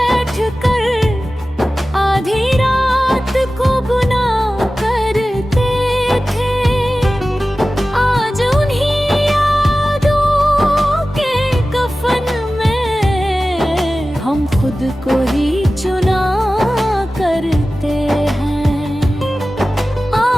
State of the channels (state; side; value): normal; both; correlation 0.95